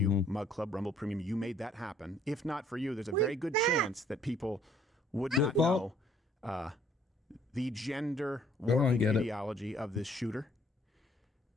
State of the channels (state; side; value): normal; both; correlation 0.62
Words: Mug Club, Rumble Premium. You made that happen. If not for you, there's a very good chance that people would not know the gender warping ideology of this shooter.